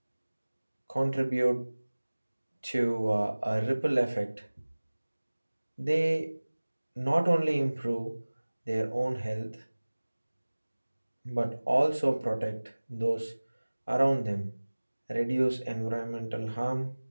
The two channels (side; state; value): both; inverted; correlation -1.00